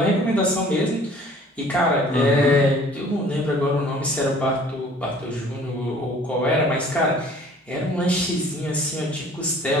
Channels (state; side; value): normal; both; correlation 0.52